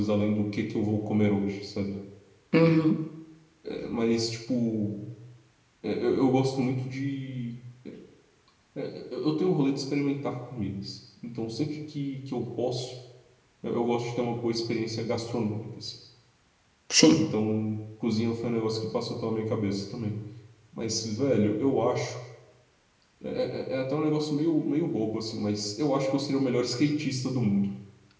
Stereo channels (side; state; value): both; identical; correlation 1.00